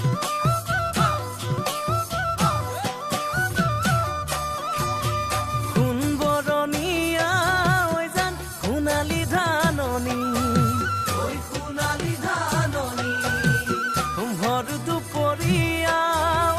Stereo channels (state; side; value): identical; both; correlation 1.00